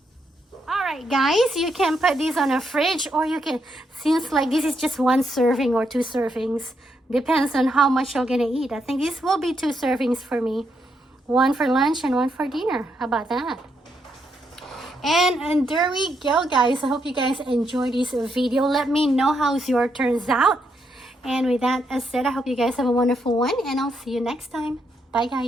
Alright guys, you can put these on a fridge, or you can, since like this is just 1 serving or 2 servings, depends on how much you're gonna eat. I think this will be 2 servings for me. 1 for lunch and 1 for dinner. How about that? And there we go, guys. I hope you guys enjoyed this video. Let me know how your turns out. And with that said, I hope you guys have a wonderful one, and I'll see you next time. Bye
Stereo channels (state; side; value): normal; both; correlation 0.79